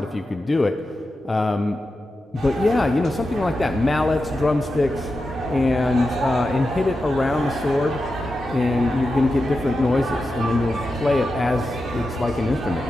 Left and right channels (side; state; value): both; normal; correlation 0.90